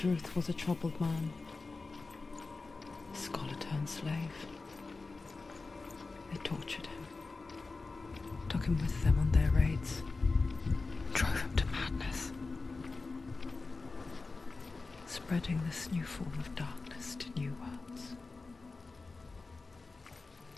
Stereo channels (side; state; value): right; quieter; 3.8 dB